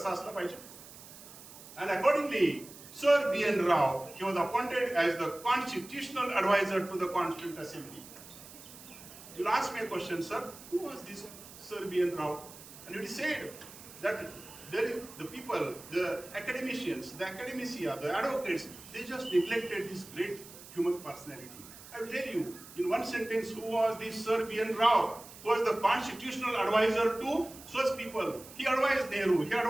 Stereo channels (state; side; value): noise; right; hiss, 17 dB below the sound